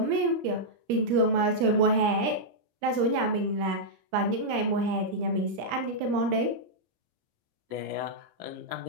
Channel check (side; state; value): left; late; 17 ms